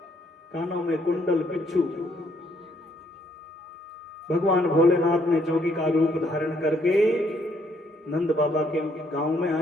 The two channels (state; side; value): normal; both; correlation 0.69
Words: कानों में कुंडल बिच्छू। भगवान भोलेनाथ ने जोगी का रूप धारण करके नंद बाबा के गांव में